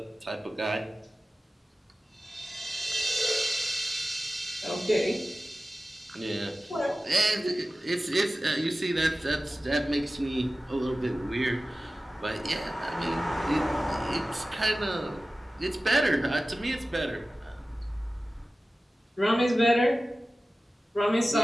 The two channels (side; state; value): both; normal; correlation 0.96